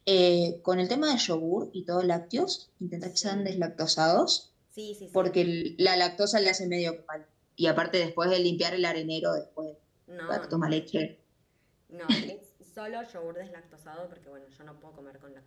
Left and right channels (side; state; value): both; identical; correlation 1.00